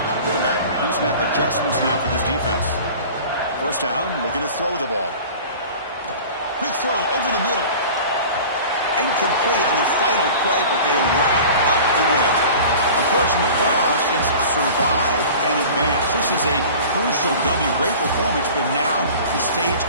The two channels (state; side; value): inverted; both; correlation -0.40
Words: Quarterback pre-snap adjustments now for this defense. 1st down, looking to throw the ball. Quick throw over the middle. Incomplete on the final play, but they wrap up the win. Of course, in the playoffs, it's survive and advance. This is a crucial W. Great performance, but now the stage